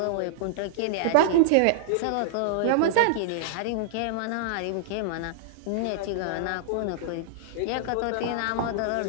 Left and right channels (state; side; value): different; both; correlation -0.01